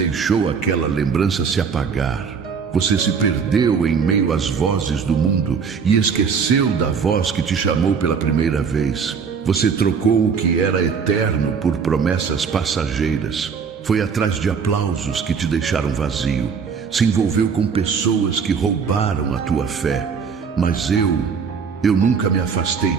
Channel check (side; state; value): left; quieter; 6.0 dB